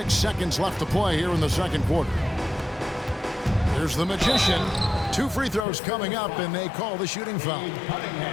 seconds left to play here in the second quarter. Here's the Magician. 2 free throws coming up, and they call the shooting foul.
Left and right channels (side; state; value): right; drops out; at 5.7 s